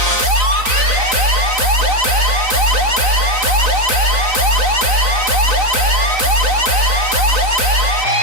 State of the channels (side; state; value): left; late; 3.9 ms